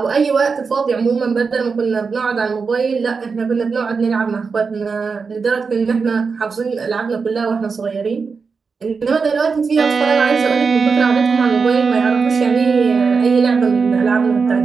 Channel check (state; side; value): quieter; left; 5.1 dB